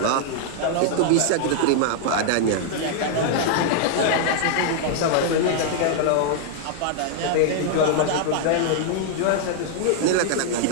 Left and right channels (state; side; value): different; both; correlation 0.00